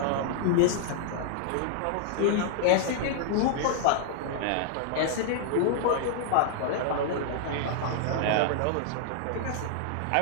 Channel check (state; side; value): different; both; correlation -0.01